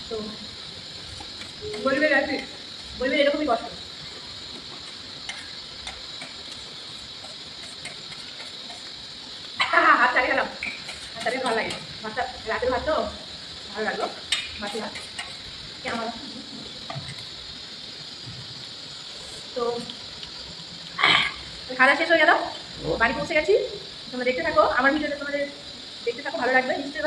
তো বলবে এরকমই কষ্ট। হাত চালিয়ে গেলাম, হাত চালিয়ে ভালো লাগে। ভাতটা রাতের ভাত তো ভালো লাগলো, বাকি ভাত কেমন। তো খাওয়া শেষ হয়ে গেল, বাড়ি পৌঁছে গেছি। তোমরা দেখতে থাকো আমার ভিডিওটা, তোমাদের দেখতে থাকো, ভালো লাগবে, নিশ্চয়ই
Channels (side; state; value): both; identical; correlation 1.00